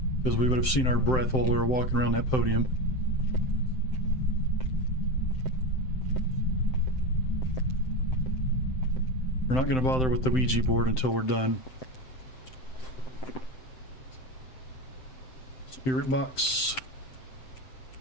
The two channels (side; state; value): right; late; 7.8 ms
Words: because we would have seen our breath while we were walking around that podium. We're not going to bother with the Ouija board until we're done. Spirit box.